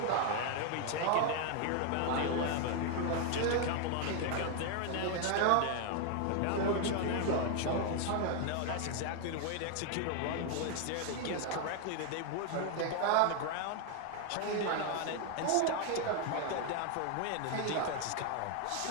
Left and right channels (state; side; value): different; both; correlation 0.00